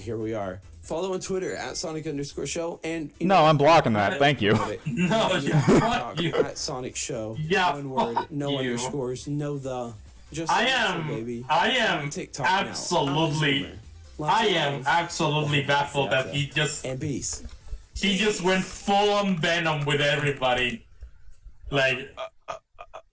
here we are. Follow on Twitter at Sonic_show, and No, I'm blocking that. Thank you. No, fuck you. At Sonic Show. Yeah, one word, fuck no you. underscores, no the. Just I Sonic Show, baby. am TikTok now. absolutely, I am absolutely baffled that he just went full on Venom with everybody. Like,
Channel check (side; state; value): both; identical; correlation 1.00